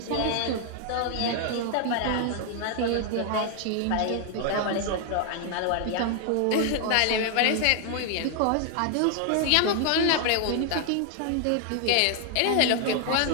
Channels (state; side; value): different; both; correlation 0.00